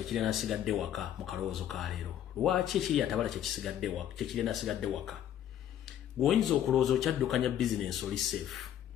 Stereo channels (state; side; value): quieter; right; 10.7 dB